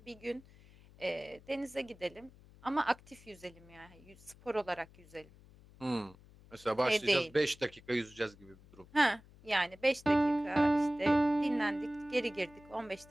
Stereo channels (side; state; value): left; noise; hum, 24 dB below the sound